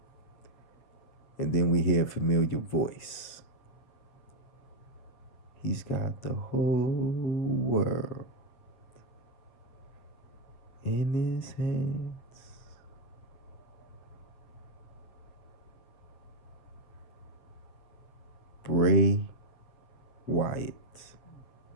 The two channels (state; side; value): late; right; 8.2 ms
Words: And then we hear a familiar voice. He's got the whole world in his hands. Bray Wyatt